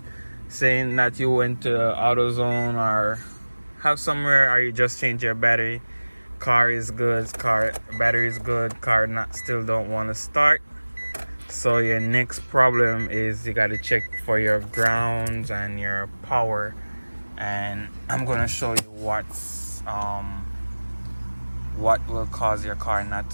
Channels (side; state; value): both; inverted; correlation -1.00